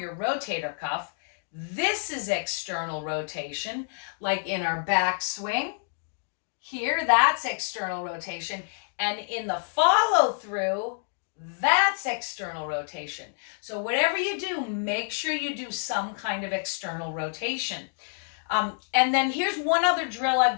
rotator cuff. This is external rotation, like in our back swing. Here, that's external rotation. And in the follow through, That's external rotation. So whatever you do, make sure you do some kind of external rotation. And then here's one other drill I've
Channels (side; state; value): right; silent; digital silence